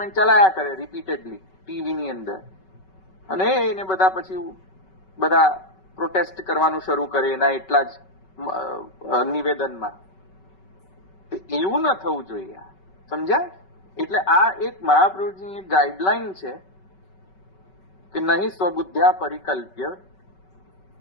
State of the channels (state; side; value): late; right; 5.3 ms